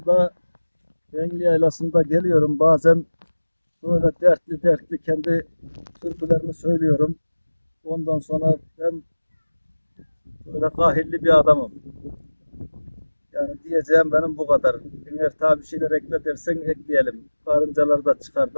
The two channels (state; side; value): inverted; both; correlation -1.00